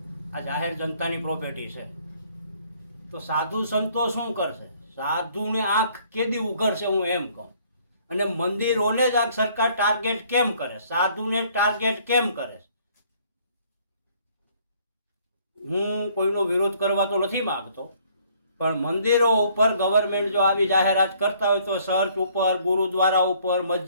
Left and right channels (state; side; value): inverted; both; correlation -0.62